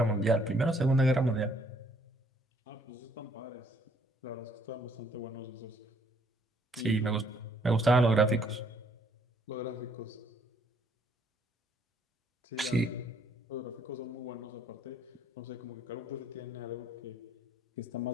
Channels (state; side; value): normal; both; correlation 0.65